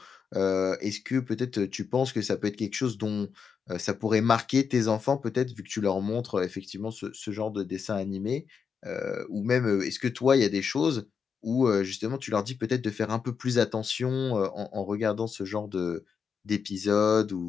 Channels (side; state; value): right; quieter; 6.3 dB